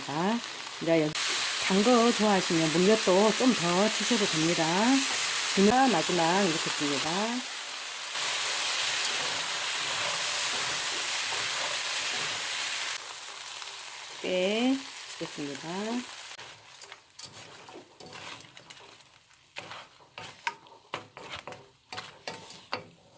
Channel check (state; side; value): identical; both; correlation 1.00